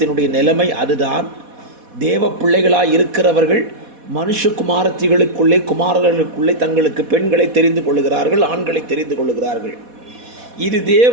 நிலைமை அதுதான். தேவ பிள்ளைகளாக இருக்கிறவர்கள் மனுஷகுமாரத்திகளுக்குள்ளே குமாரர்களுக்குள்ளே தங்களுக்கு பெண்களை தெரிந்து கொள்கிறார்கள், ஆண்களை தெரிந்து கொள்கிறார்கள். இது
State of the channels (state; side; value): late; left; 4.1 ms